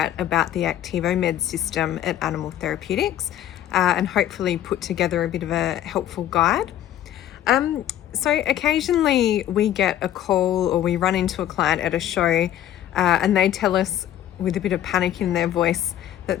about the Activo-Med system at Animal Therapeutics and hopefully put together a bit of a helpful guide. So occasionally we get a call or we run into a client at a show and they tell us with a bit of panic in their voice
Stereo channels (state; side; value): quieter; right; 11.8 dB